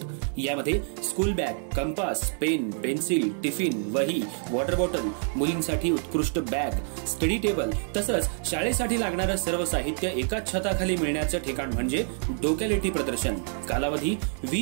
यामध्ये school bag, compass, pen, pencil, tiffin, वही, वॉटर बॉटल, मुलींसाठी उत्कृष्ट बॅग, स्टडी टेबल तसंच शाळेसाठी लागणारं सर्व साहित्य एकाच छताखाली मिळण्याचं ठिकाण म्हणजे डोक्यालिटी प्रदर्शन। कालावधी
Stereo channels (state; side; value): silent; left; 60 dB below the other